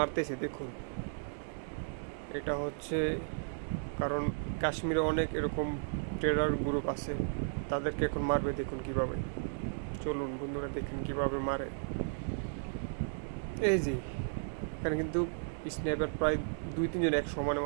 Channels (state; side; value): silent; left; digital silence